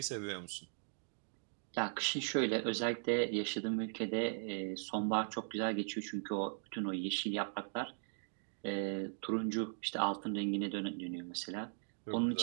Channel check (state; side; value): silent; left; digital silence